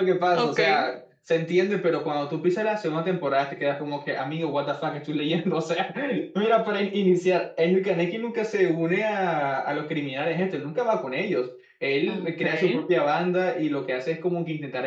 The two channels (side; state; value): both; identical; correlation 1.00